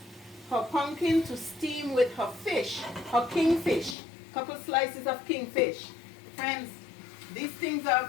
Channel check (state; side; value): drops out; right; at 4.0 s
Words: her pumpkin to steam with her fish, her kingfish. Couple slices of kingfish. Friends, these things